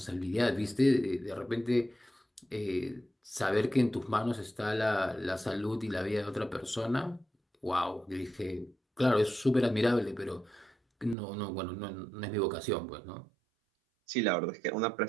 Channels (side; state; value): left; drops out; at 11.2 s